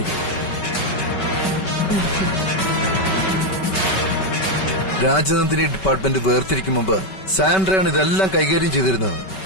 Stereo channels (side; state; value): right; late; 5.3 ms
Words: രാജനന്ദിനി ഡിപ്പാർട്ട്മെന്റ് വേർതിരിക്കും മുമ്പ് സാൻഡ്രയാണ് ഇതെല്ലാം കൈകാര്യം ചെയ്തിരുന്നത്.